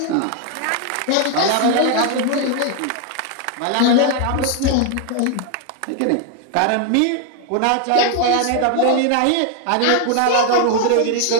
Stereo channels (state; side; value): different; both; correlation 0.00